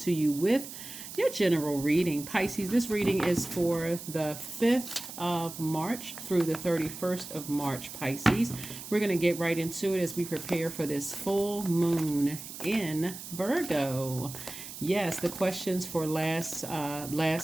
you with your general reading. Pisces, this reading is for the 5th of March through the 31st of March, Pisces. We're going to get right into it as we prepare for this full moon in Virgo. Yes, the questions for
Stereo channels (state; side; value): noise; right; hiss, 11 dB below the sound